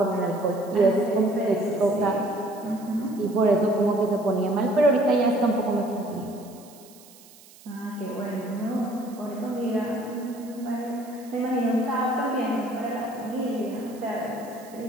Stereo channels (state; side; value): noise; right; hiss, 23 dB below the sound